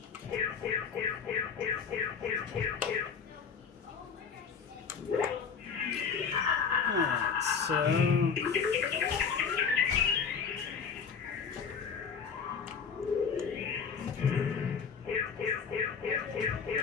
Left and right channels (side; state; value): right; quieter; 6.1 dB